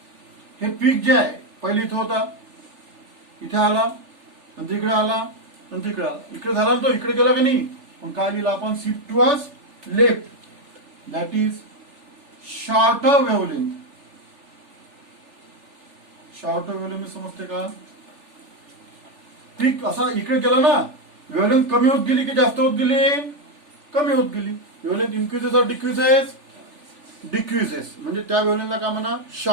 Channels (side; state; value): left; late; 3.4 ms